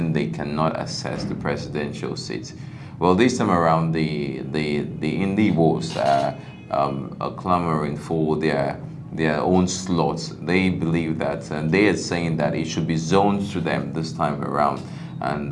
they cannot access the presidential seat? Well, this time around, the Igbos are clamoring for their own slots. They believe that, and they are saying that it should be zoned to them this time around, and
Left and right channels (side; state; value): both; identical; correlation 1.00